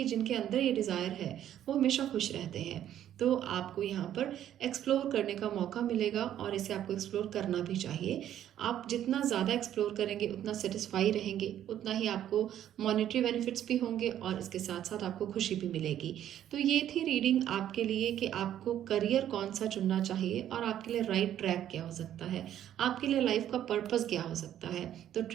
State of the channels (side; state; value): left; quieter; 11.1 dB